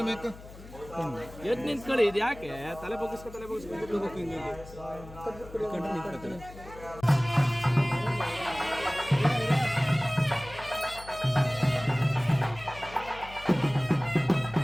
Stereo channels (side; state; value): left; noise; hum, 17 dB below the sound